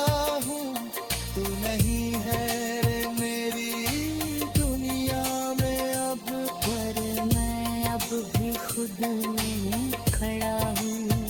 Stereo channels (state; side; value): identical; both; correlation 1.00